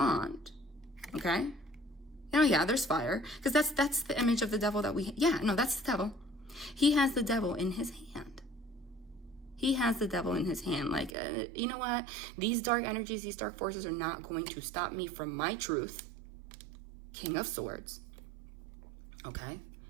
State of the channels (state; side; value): drops out; left; at 11.1 s